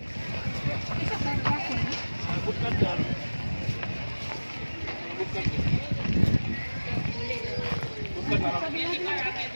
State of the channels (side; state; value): both; inverted; correlation -1.00